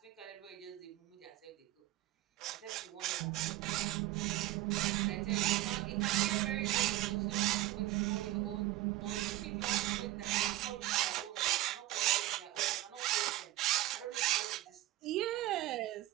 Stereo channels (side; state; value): left; quieter; 16.3 dB